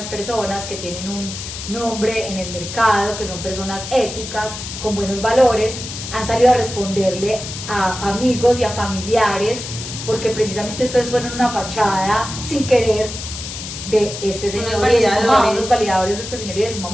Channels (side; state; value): left; noise; hiss, 9 dB below the sound